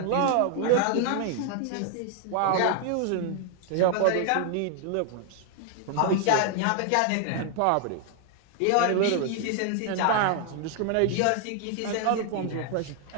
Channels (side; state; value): both; different; correlation 0.00